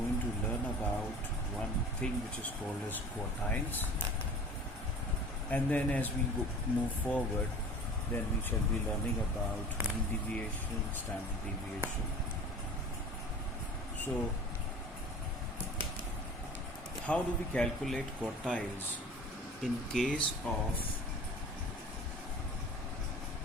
to learn about one thing which is called as quartiles. And then, as we move forward, then we shall be learning about mean deviation, standard deviation. So, how do we calculate quartiles in case of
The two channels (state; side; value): normal; both; correlation 0.41